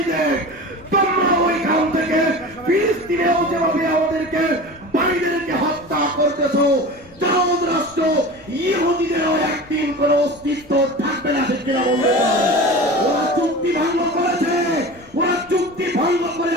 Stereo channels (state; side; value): noise; left; rumble, 25 dB below the sound